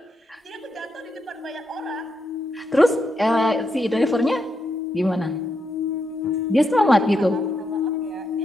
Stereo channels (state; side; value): normal; both; correlation 0.82